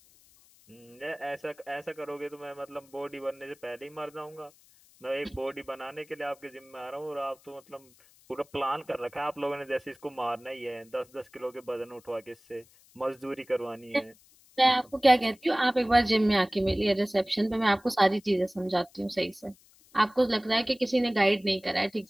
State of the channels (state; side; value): noise; left; hiss, 28 dB below the sound